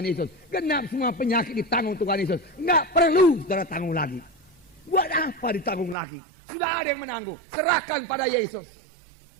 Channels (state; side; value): drops out; left; at 6.0 s